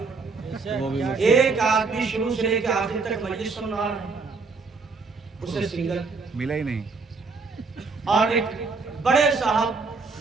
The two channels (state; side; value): quieter; left; 4.4 dB